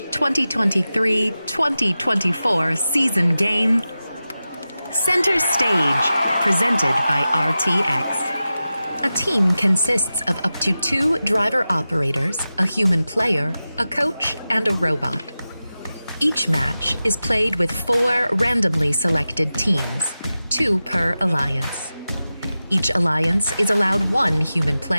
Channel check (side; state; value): both; inverted; correlation -0.94